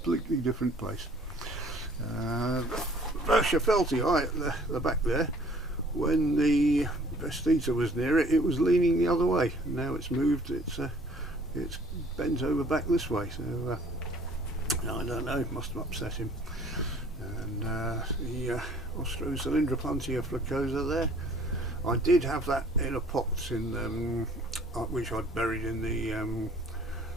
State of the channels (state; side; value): normal; both; correlation 0.55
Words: different place. Feltii at the back there, when the Vestiza was near it, it was leaning the other way. Now it's moved, it's bent over back this way, so I don't know, it must have upset him. And the Opuntia flacosa there, I did have that in a pot in which I'd buried in the